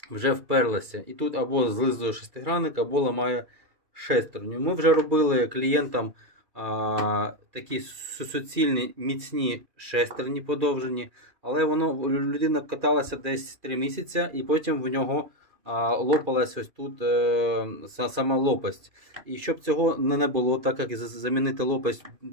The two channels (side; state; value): left; late; 2.4 ms